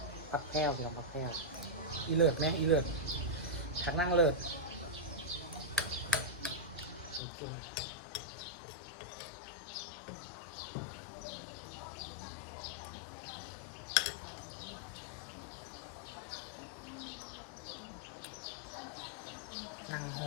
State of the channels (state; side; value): drops out; right; at 7.2 s